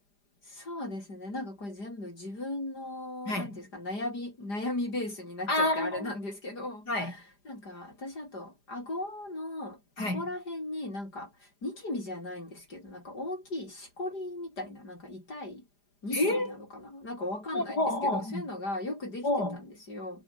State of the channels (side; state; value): right; late; 4.9 ms